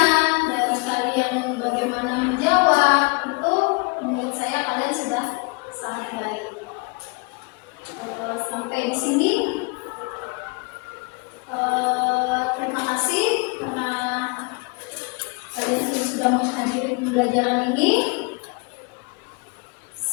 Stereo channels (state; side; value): quieter; right; 30.2 dB